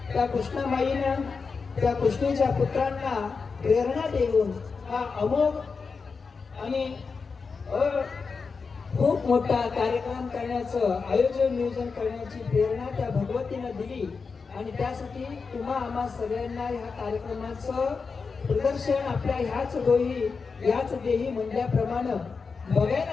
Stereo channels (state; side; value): quieter; right; 4.9 dB